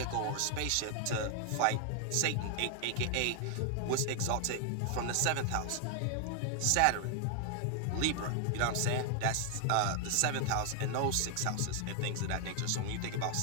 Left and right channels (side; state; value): both; different; correlation 0.00